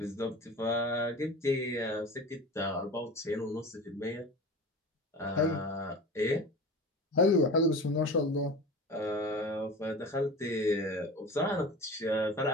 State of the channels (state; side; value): normal; both; correlation 0.34